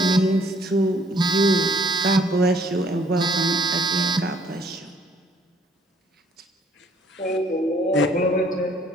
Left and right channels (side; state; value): both; normal; correlation 0.62